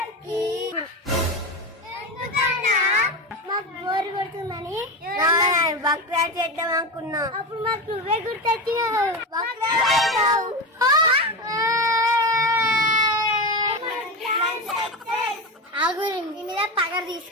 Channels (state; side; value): normal; both; correlation 0.20